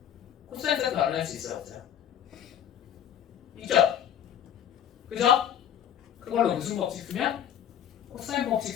코사인 세트 알아낼 수 있어요 없어요? 있죠? 그죠? 그걸로 무슨 법칙 쓰면? 코사인 법칙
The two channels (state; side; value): quieter; right; 9.6 dB